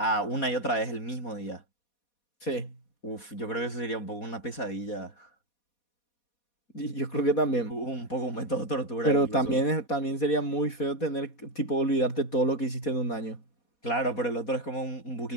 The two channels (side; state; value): right; late; 4.2 ms